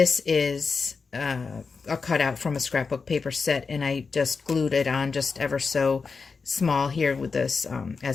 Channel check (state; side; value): quieter; right; 4.9 dB